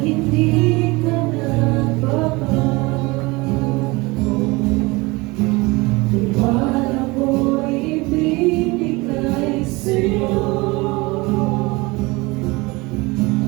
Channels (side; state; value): left; quieter; 23.9 dB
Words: Di ka nagbabago, tiwala ko'y ibinigay sa'yo.